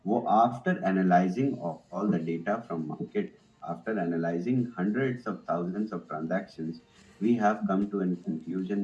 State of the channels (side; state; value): both; identical; correlation 1.00